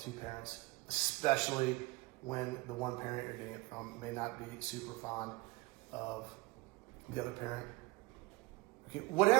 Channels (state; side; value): quieter; left; 21.8 dB